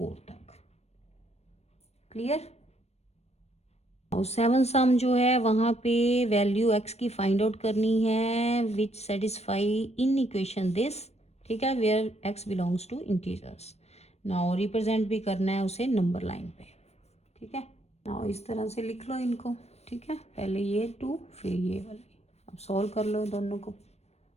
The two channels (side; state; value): right; late; 0.31 ms